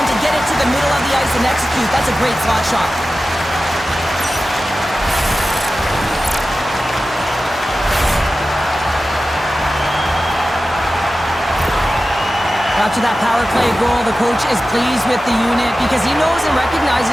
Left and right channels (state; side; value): normal; both; correlation 0.94